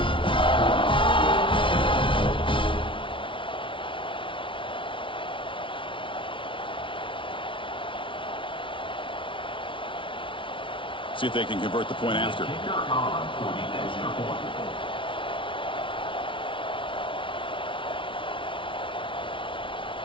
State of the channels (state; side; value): late; right; 0.25 ms